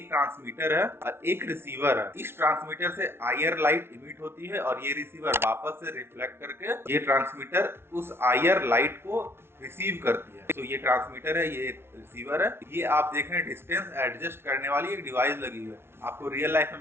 ट्रांसमीटर है और एक रिसीवर है। इस ट्रांसमीटर से आईआर लाइट इमिट होती है और ये रिसीवर वापस से रिफ्लेक्ट करके ये ट्रांसमीटर उस आईआर लाइट को रिसीव करती है। तो ये ट्रांसमीटर है, ये रिसीवर है। ये आप देख रहे हैं डिस्टेंस एडजस्ट करने वाली एक डिवाइस लगी हुई है। आपको रियल लाइफ में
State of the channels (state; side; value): late; left; 0.12 ms